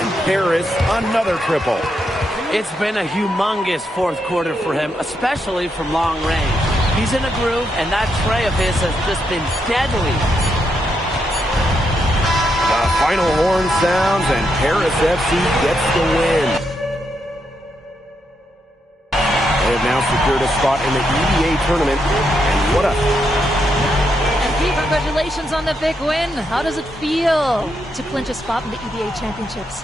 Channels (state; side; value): normal; both; correlation 0.81